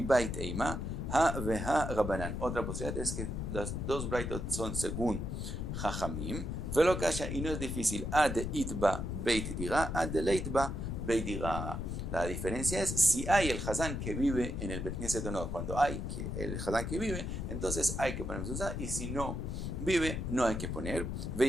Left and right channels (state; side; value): noise; left; rumble, 3 dB below the sound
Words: eima, ha veha rabanan. Otra posibilidad es que las dos braitot son según Jajamim, velo kasha, y no es difícil, ad itba beit dira, ad leitba beit dira. La diferencia es si hay el Hazán que vive en el Beit Knesset o no. Cuando hay el Hazán que vive, entonces hay que poner mezuzah, y si no vive, no hay que poner.